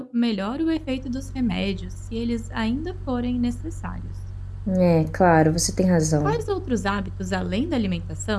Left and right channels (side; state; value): both; identical; correlation 1.00